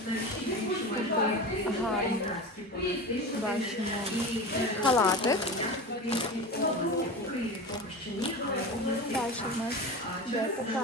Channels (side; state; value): both; normal; correlation 0.29